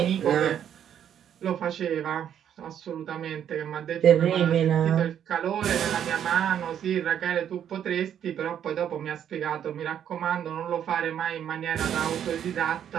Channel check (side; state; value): left; quieter; 9.5 dB